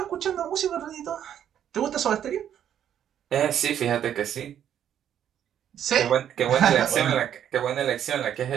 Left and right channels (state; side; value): quieter; left; 9.9 dB